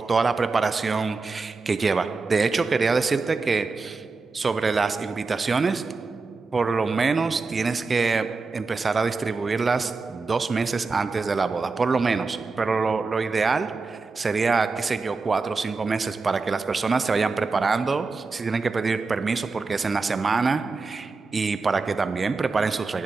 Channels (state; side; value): quieter; left; 4.2 dB